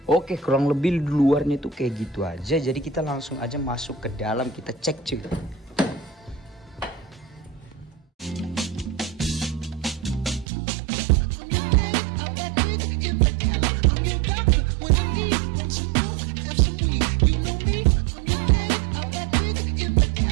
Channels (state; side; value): drops out; left; at 10.5 s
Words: Oke, kurang lebih di luarnya tuh kayak gitu aja. Jadi kita langsung aja masuk ke dalam, kita cek cuy.